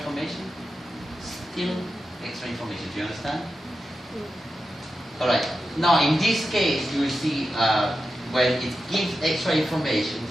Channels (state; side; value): normal; both; correlation 0.90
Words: Still extra information. Do you understand? Alright. Now in this case, you will see when it gives extra information,